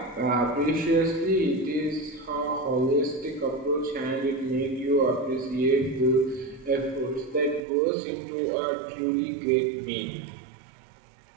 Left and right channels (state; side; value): drops out; left; at 7.6 s